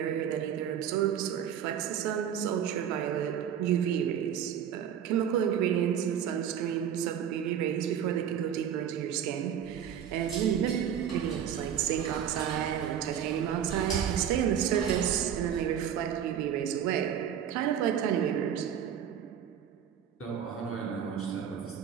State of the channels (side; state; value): left; quieter; 9.0 dB